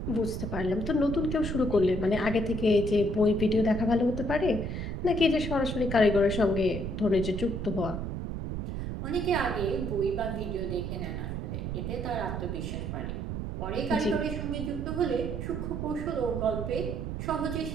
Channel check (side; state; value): right; noise; rumble, 4 dB below the sound